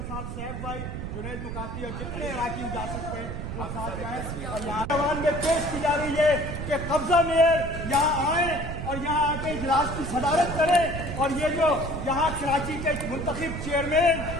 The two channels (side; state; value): right; noise; rumble, 6 dB below the sound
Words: साथ सैफ भाई, जुनैद मुकाती और जितने इलाके जा सकते हैं वो साथ जाएं। और यहाँ अवान में पेश की जा रही है कि कब्जा मेयर यहाँ आए और यहाँ आके इजलास की सदारत करें और ये जो यहाँ कराची के मुंतखब चेयरमैन